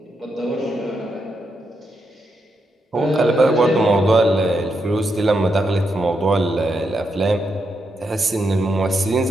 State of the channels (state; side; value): normal; both; correlation 0.83